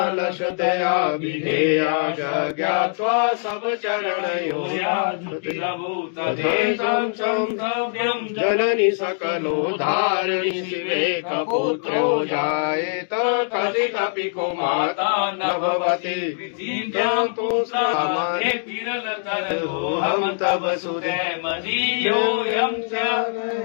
लशतया विधेया ज्ञात्वा सब चरणयो तथेशं संभव्यं जननि सकलोद्धारिणि शिवे कपुत्रो जायेत कथितपि को माता न भवति विधिं तु सामान्ये विरलतरोऽहं तव सुते मदीयोऽयं च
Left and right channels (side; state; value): right; silent; digital silence